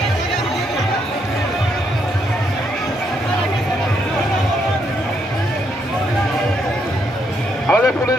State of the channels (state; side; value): normal; both; correlation 0.75